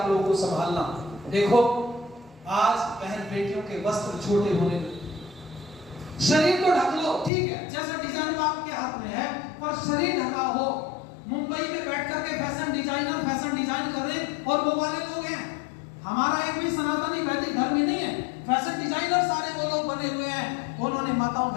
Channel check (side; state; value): right; drops out; at 7.3 s